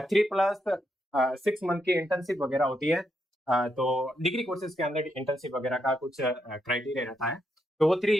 3+6 मंथ की इंटर्नशिप वगैरह होती है। तो डिग्री कोर्सेज के अंदर इंटर्नशिप वगैरह का कुछ क्राइटेरिया रहता है, तो वो 3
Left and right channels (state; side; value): normal; both; correlation 0.81